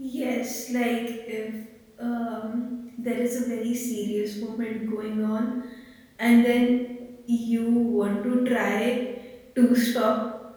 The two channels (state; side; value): identical; both; correlation 1.00